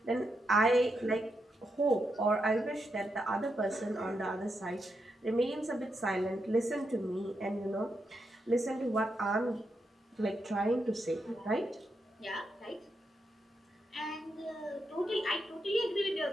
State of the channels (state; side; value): normal; both; correlation 0.83